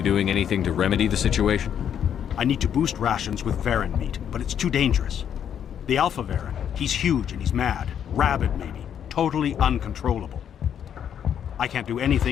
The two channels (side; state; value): right; quieter; 8.9 dB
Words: doing anything to remedy the situation? I need to boost rations with Varen meat, but it's too dangerous. The Alpha Varen, he's huge and he's mad. Rabid, maybe. Totally uncontrollable. I can't do